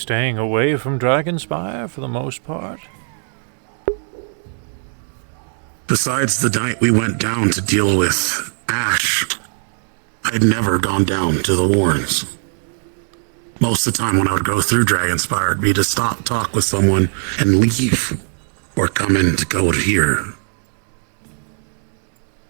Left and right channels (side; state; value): left; silent; 55 dB below the other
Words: away from Dragonspire for the most part? Besides the night we went down to deal with Ash, I'd never gone down to the Warrens. Most of the time when I would go through Dragonspire, it'd be to stop, talk with someone, and leave, or come in to go to here.